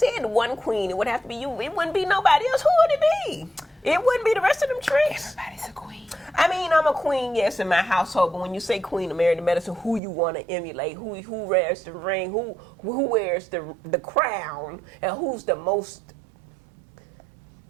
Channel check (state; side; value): drops out; left; at 10.0 s